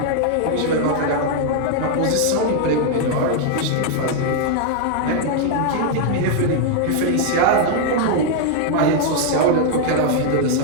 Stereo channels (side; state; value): both; different; correlation 0.00